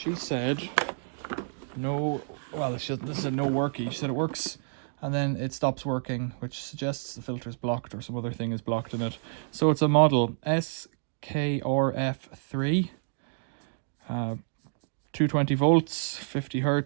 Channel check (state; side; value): silent; left; digital silence